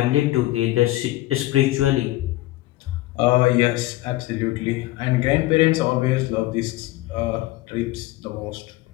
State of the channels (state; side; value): quieter; right; 17.7 dB